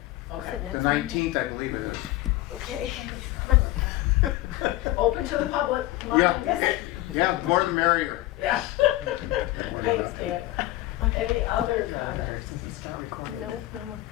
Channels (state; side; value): quieter; right; 17.1 dB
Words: Okay. it the next Monday? 19th, I believe it is. Okay. Open to the public. Come on. Yeah, yeah, the more the merrier. Yeah. Thanks, Dan. Any other comments? No, no more